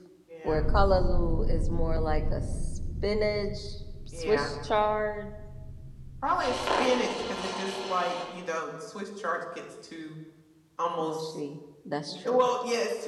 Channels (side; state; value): both; identical; correlation 1.00